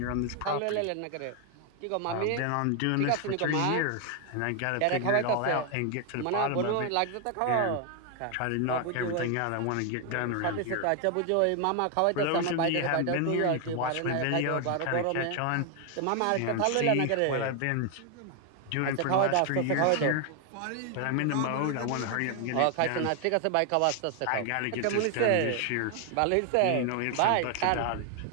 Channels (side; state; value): both; different; correlation 0.01